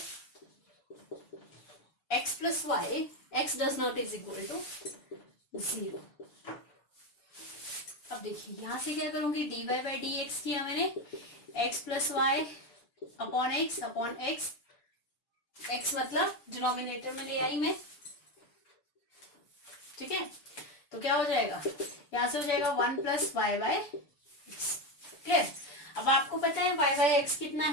x does not is equal to 0। अब देखिए यहां से क्या करूंगी, dy by dx किया मैंने, x plus y upon x x मतलब डिनोमिनेटर में ले आई मैं, ठीक है। तो क्या हो जाएगा, यहां से हो जाएगा 1 plus y by x. Clear. अब आपको पता है y बाय एक्स कितना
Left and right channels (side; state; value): right; late; 6.9 ms